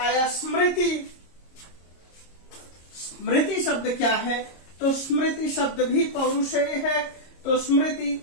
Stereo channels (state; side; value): late; right; 26 ms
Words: स्मृति। स्मृति शब्द क्या है? तो स्मृति शब्द भी पौरुषेय है। तो